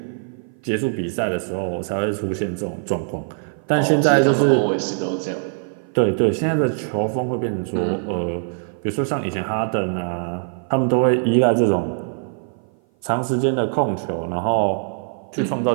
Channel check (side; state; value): left; silent; 56 dB below the other